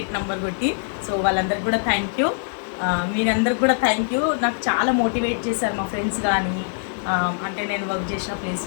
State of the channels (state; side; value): silent; right; digital silence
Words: నెంబర్ కొట్టి. సో వాళ్ళందరికీ కూడా థ్యాంక్ యూ, మీరందరికి కూడా థ్యాంక్ యూ. నాకు చాలా మోటివేట్ చేశారు మా ఫ్రెండ్స్ కానీ, అంటే నేను వర్క్ చేసిన